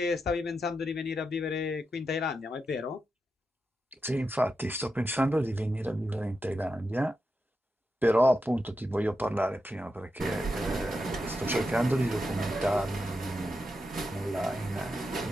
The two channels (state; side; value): normal; both; correlation 0.87